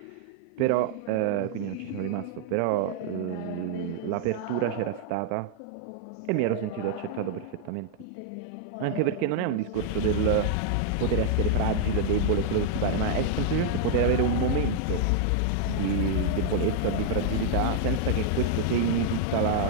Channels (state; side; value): different; both; correlation -0.01